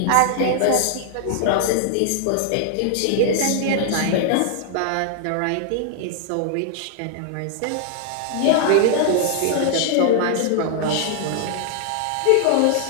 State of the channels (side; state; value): both; different; correlation -0.01